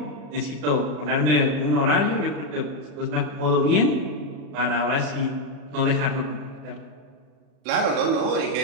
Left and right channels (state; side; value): late; left; 40 ms